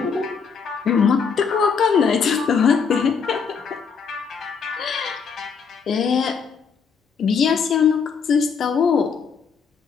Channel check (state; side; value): quieter; right; 5.9 dB